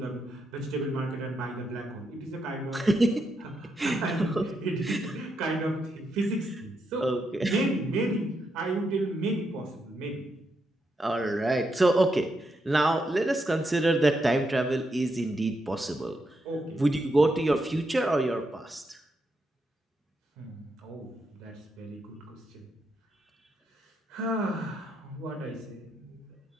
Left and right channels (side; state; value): both; normal; correlation 0.81